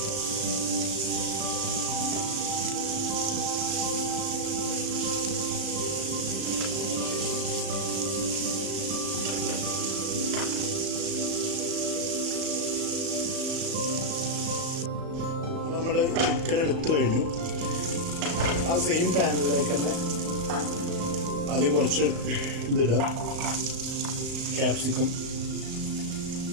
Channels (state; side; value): late; left; 36 ms